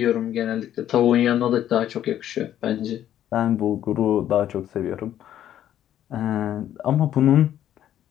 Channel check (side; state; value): right; quieter; 11.3 dB